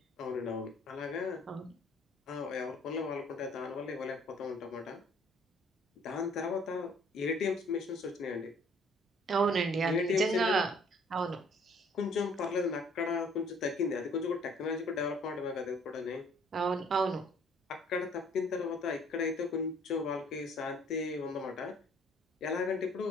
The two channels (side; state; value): both; normal; correlation 0.58